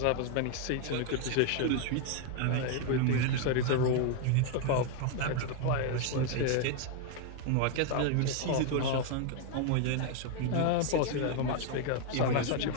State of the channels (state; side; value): different; both; correlation 0.00